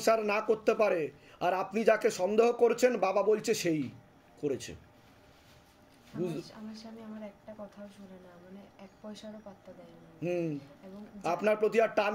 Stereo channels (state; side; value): identical; both; correlation 1.00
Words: না করতে পারে। আর আপনি যাকে সন্দেহ করছেন, বাবা বলছে সেই করেছে। আমার স্বামী আমার একটা কথাও শুনে না, মানে 1 পয়সারও পাত্তা দেয় না। এবং আপনার প্রতি আর টান